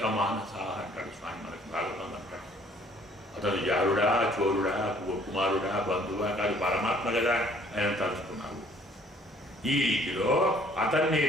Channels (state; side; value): normal; both; correlation 0.59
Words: మానసా అంటాడు స్వామి మనకు భాగవతం అంటాడు. అతను జారుడా, చోరుడా, కుమారుడా, బంధువా కాదు, పరమాత్మ కదా ఆయన తలుచుకున్నావు. ఈ రీతిలో అతన్నే